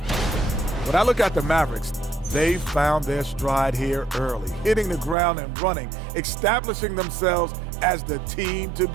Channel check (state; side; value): drops out; left; at 5.2 s